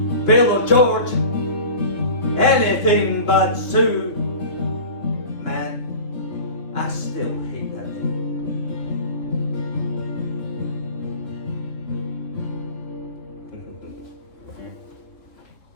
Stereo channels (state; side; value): late; right; 3.2 ms